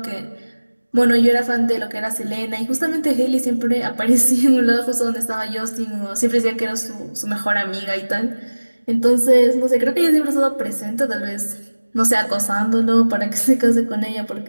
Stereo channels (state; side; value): inverted; both; correlation -1.00